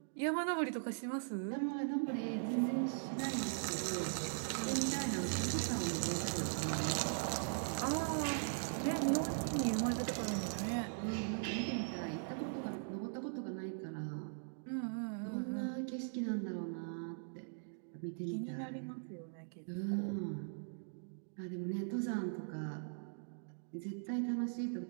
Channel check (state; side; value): silent; left; digital silence